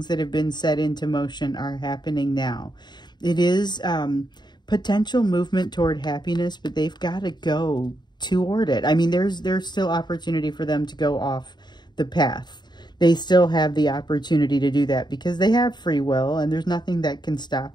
that have been set into motion are happening now. It is potential movement toward happiness, but they've got to go toward it. I mean, there's still opportunity for them to go off the path. They still have the opportunity to do that because they have free will, and there's nothing that can stop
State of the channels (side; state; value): right; late; 0.21 ms